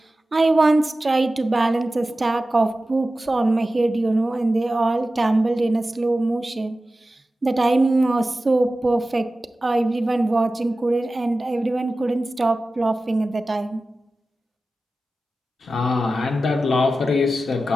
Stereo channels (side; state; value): both; normal; correlation 0.95